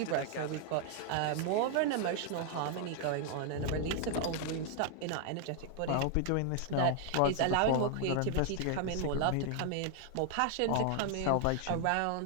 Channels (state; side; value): different; both; correlation 0.00